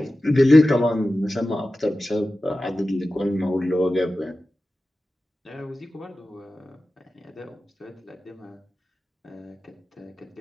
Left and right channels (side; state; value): both; normal; correlation 0.95